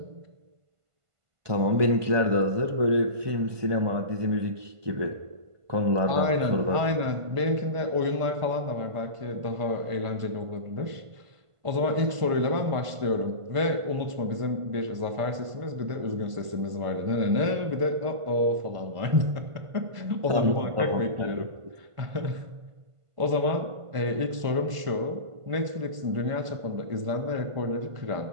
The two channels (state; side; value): late; left; 1.5 ms